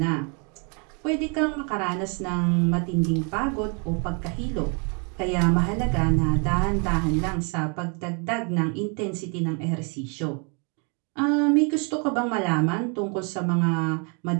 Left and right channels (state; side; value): quieter; left; 35.5 dB